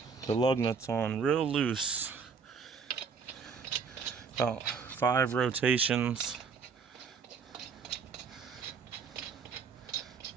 the lug nuts on real loose, about 5 rotations,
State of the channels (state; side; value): quieter; left; 5.7 dB